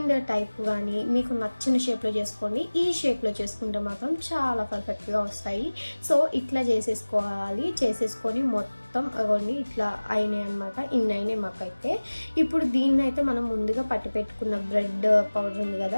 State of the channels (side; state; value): both; inverted; correlation -1.00